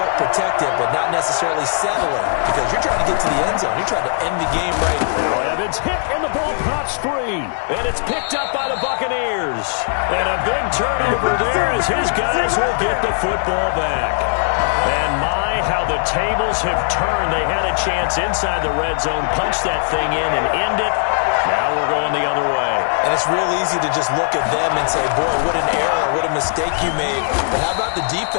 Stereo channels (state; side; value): silent; right; digital silence